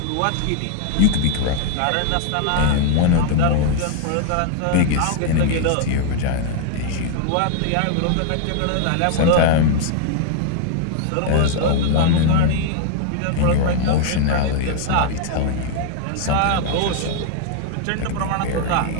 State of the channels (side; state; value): both; different; correlation 0.00